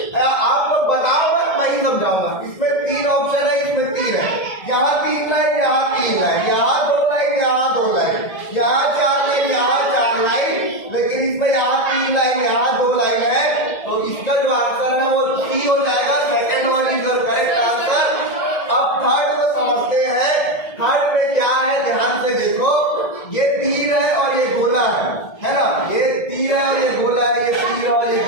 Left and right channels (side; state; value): right; late; 1.7 ms